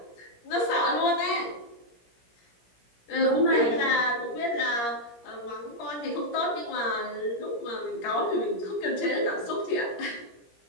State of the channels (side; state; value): right; late; 17 ms